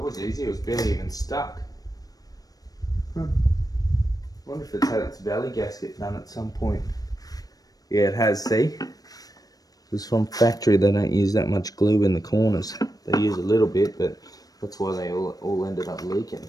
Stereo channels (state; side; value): late; right; 0.18 ms